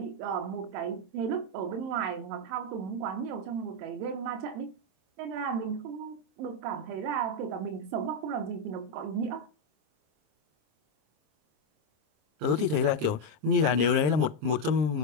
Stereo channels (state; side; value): late; left; 26 ms